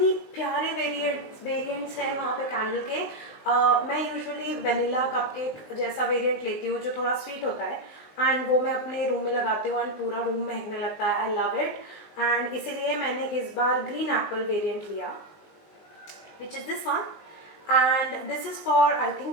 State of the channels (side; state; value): right; late; 19 ms